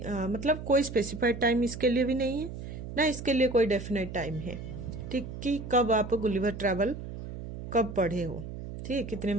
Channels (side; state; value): right; noise; hum, 9 dB below the sound